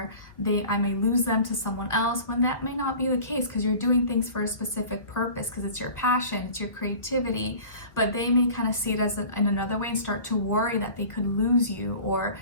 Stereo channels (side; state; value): right; late; 1.6 ms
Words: I may lose them to someone else, when that may not be the case, because you're doing things for a specific purpose, because it's your passion, it's your creativity. But they may kind of see it as in another way and start to worry that they could lose you, or